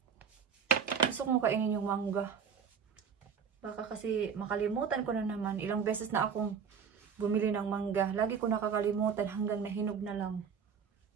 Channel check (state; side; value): quieter; left; 6.7 dB